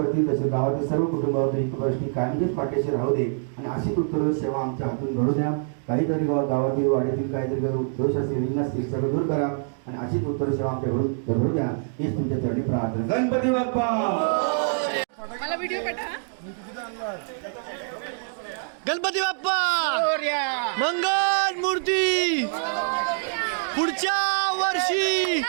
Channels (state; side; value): silent; left; digital silence